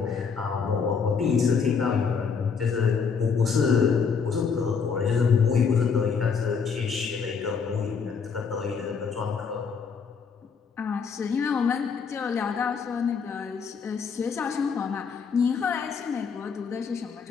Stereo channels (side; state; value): right; quieter; 5.8 dB